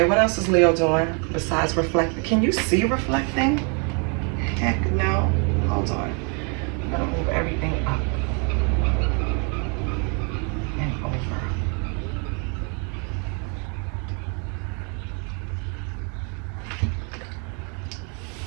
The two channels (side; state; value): left; quieter; 36.1 dB